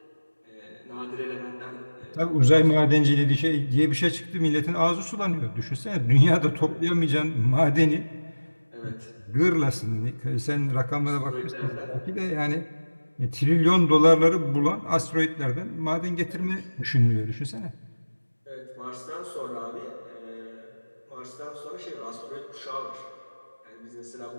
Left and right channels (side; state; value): both; inverted; correlation -1.00